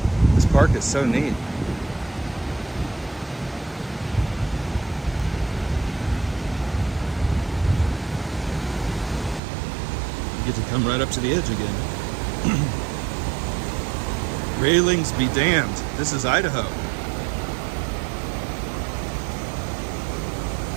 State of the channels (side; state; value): left; drops out; at 9.4 s